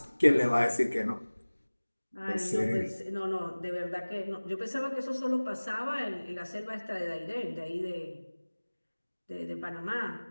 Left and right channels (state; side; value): inverted; both; correlation -1.00